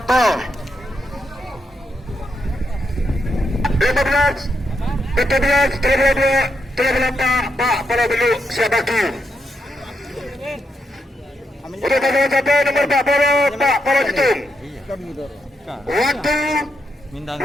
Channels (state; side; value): normal; both; correlation 0.81